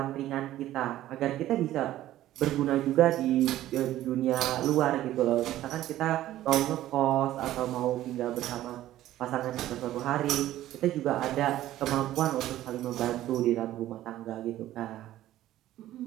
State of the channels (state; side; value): quieter; left; 14.0 dB